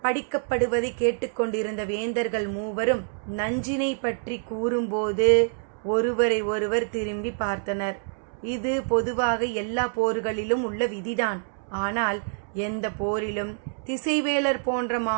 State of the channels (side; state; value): left; silent; 61 dB below the other